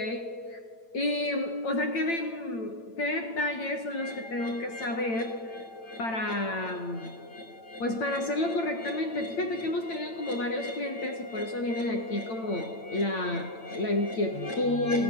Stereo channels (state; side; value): late; right; 8.9 ms